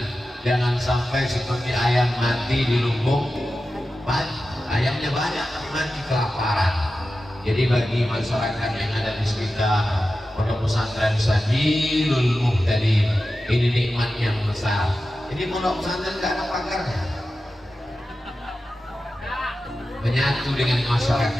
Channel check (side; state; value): both; normal; correlation 0.93